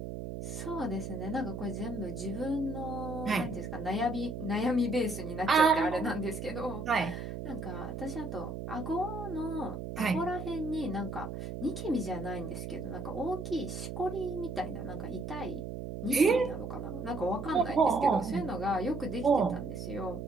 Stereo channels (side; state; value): right; noise; hum, 6 dB below the sound